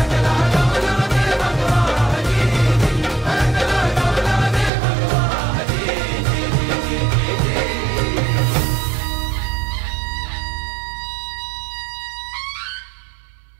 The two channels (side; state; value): left; drops out; at 4.7 s